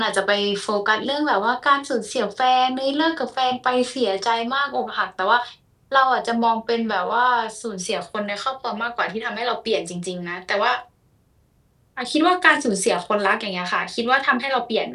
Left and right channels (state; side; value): identical; both; correlation 1.00